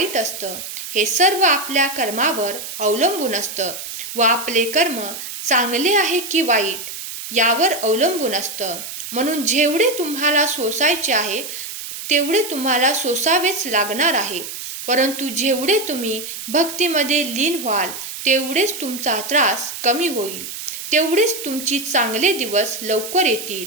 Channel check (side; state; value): right; noise; hiss, 9 dB below the sound